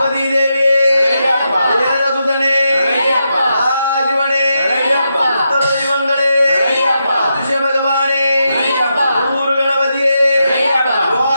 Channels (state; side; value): inverted; both; correlation -0.84